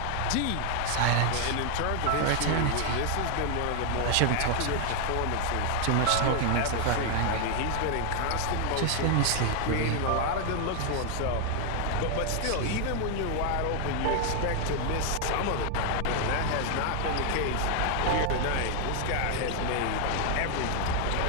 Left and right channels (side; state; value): both; different; correlation 0.00